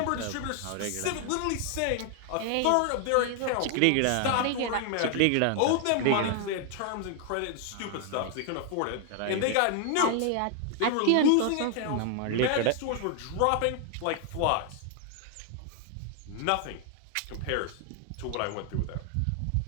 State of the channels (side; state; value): both; different; correlation 0.00